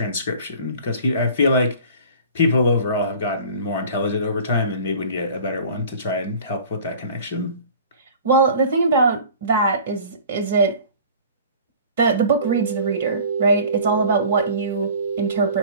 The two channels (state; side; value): inverted; both; correlation -0.45